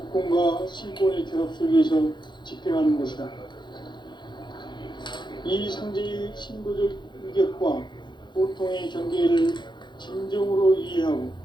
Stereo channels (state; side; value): late; right; 0.22 ms